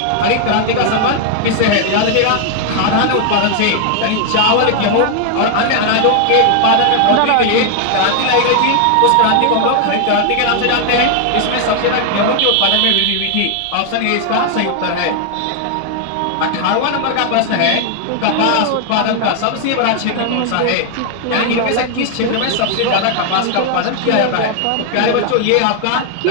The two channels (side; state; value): both; different; correlation 0.00